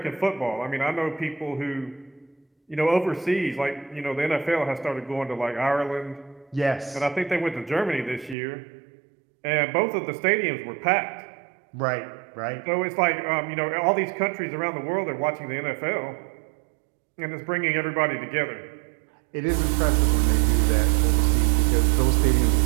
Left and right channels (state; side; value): drops out; left; at 8.3 s